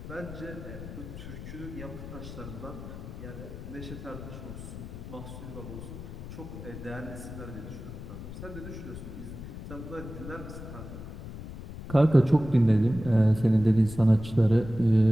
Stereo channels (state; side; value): noise; left; rumble, 11 dB below the sound